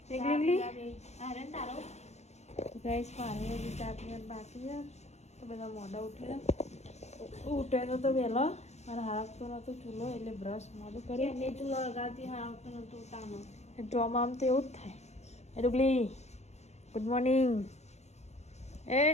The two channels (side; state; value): right; late; 0.32 ms